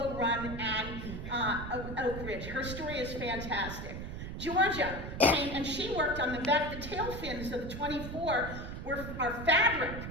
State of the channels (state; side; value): noise; right; rumble, 7 dB below the sound